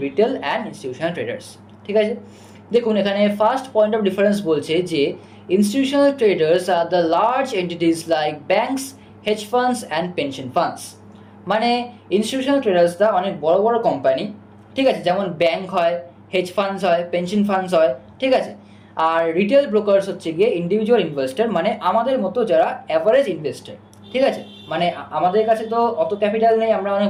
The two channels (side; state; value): both; identical; correlation 1.00